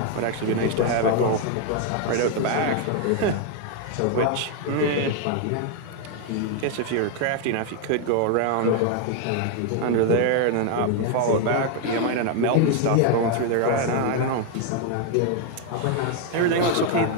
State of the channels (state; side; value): different; both; correlation 0.01